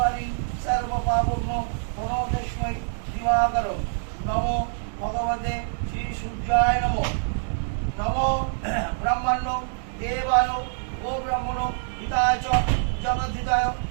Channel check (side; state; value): left; silent; 61 dB below the other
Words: সর্বপাপগ্ন প্রণতস্मै দিবাকরম। নমো ভগবতে শ্রী সূর্যায় নমো। নমো ব্রহ্মণ্য দেবায় ও ব্রহ্মণ হিতায় চ জগদ্ধিতায়